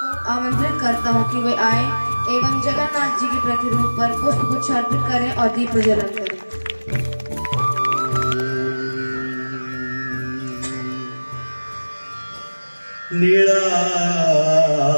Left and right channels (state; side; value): inverted; both; correlation -1.00